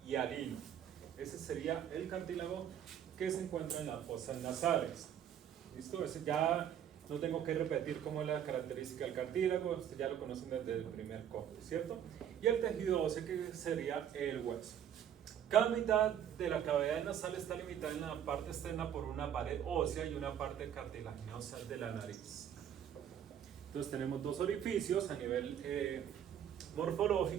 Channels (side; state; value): left; quieter; 9.5 dB